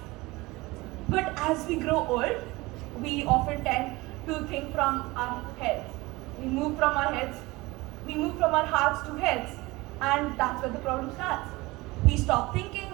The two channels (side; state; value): left; quieter; 21.6 dB